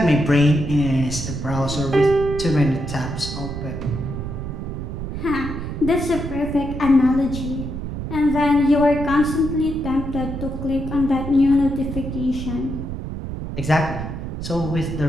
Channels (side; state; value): right; noise; rumble, 6 dB below the sound